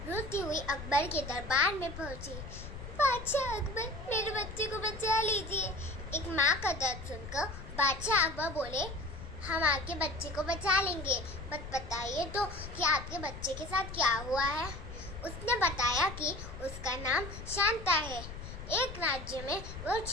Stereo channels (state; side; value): noise; left; rumble, 10 dB below the sound